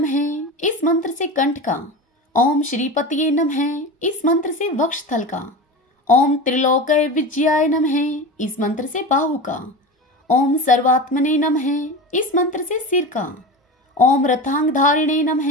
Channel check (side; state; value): both; normal; correlation 0.27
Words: इस मंत्र से कंठ का, ओम श्रीपतिये नमः इस मंत्र से वक्षस्थल का, ओम त्रिलोकय विजयाय नमः इस मंत्र से बाहु का, ओम सर्वात्मने नमः इस मंत्र से सिर का, ओम रथांगधारिणे नमः